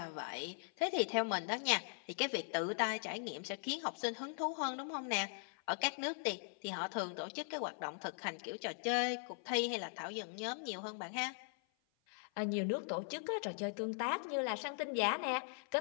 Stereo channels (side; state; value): right; silent; 51 dB below the other